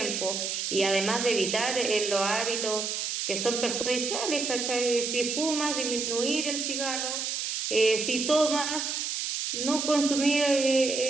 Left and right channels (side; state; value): right; noise; hiss, 2 dB below the sound